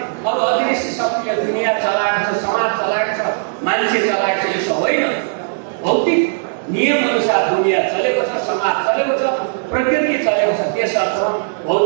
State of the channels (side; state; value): left; silent; 68 dB below the other